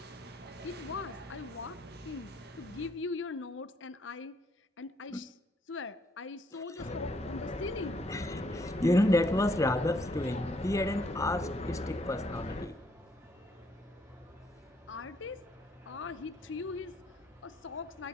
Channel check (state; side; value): normal; both; correlation 0.70